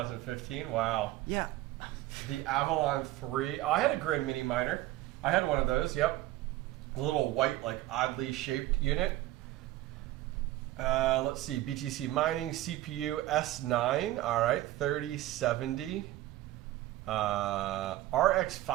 Wow. Yeah. The Avalon 3. Oh, I had a Grin Mini Miner. I had one of those. Yep. A little white, like oddly shaped unit. Let's see. BTC Mining CPU S9. All right, 3070. RX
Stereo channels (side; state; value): left; quieter; 15.7 dB